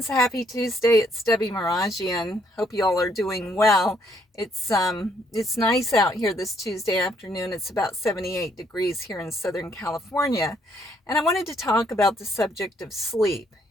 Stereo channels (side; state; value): both; normal; correlation 0.69